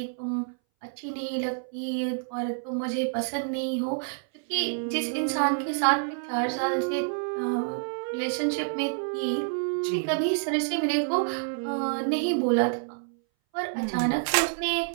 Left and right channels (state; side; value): silent; left; 59 dB below the other